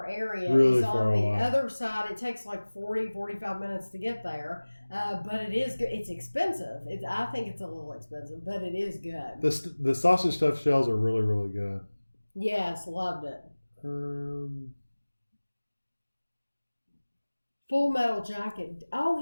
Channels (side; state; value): both; inverted; correlation -1.00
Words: area is on the other side. It takes like 45 minutes to get there. But it is good. It's expensive. I think it's a little expensive, but it is good. The sausage stuffed shells are really, really good. Yes, loved it. Full Metal Jacket. Oh,